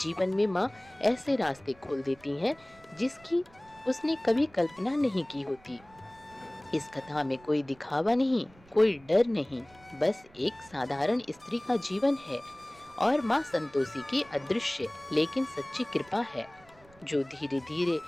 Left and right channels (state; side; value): noise; right; rumble, 26 dB below the sound